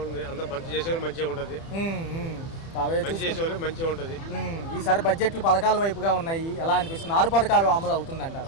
అంత మంచి చేసేవాళ్ళు మంచిగా ఉంటుంది, మంచిగా ఉంటుంది. ఈసారి బడ్జెట్లు పథకాల వైపుగా ఉన్నాయి, ఎలా అనిపిస్తుంది? 6 పథకాలు అమలు అవుతుందంటారు.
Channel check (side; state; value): right; late; 30 ms